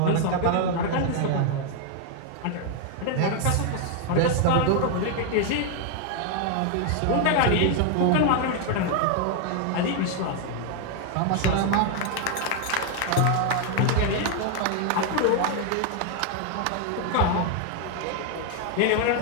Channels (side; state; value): both; different; correlation 0.00